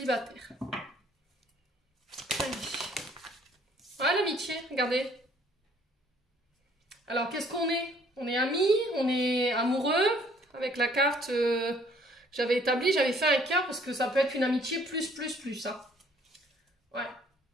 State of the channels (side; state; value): both; normal; correlation 0.60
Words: Allez. Ouais, l'amitié, regardez. Alors, qu'est-ce qu'on est? On est amis, on est amoureux, avec la carte que j'avais établie, j'avais fait un cœur parce que ça peut être une amitié plus, hein. Ouais.